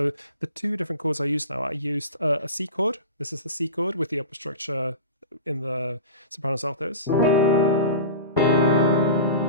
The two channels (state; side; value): inverted; both; correlation -0.32